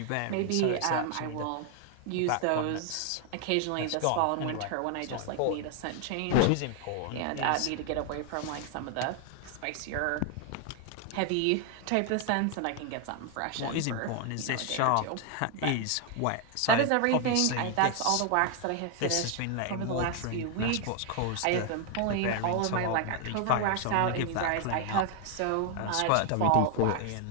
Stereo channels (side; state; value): both; different; correlation 0.00